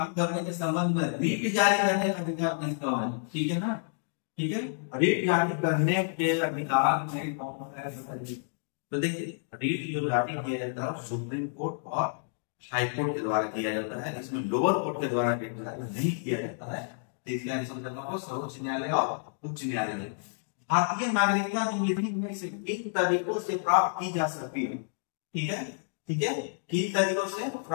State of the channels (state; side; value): silent; right; digital silence